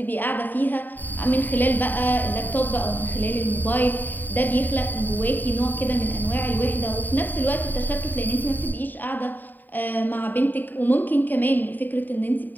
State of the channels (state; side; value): late; right; 0.088 ms